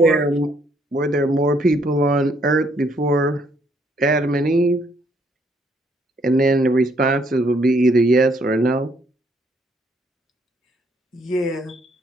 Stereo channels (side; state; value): both; normal; correlation 0.69